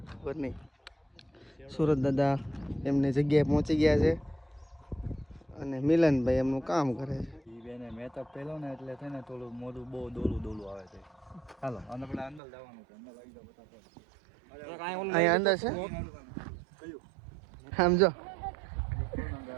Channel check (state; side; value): drops out; left; at 12.4 s